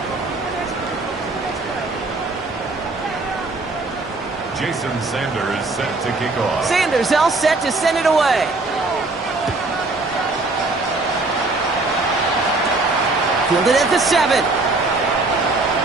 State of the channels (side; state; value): left; quieter; 3.3 dB